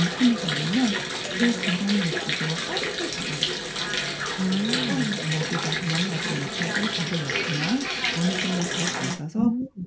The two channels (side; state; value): both; identical; correlation 1.00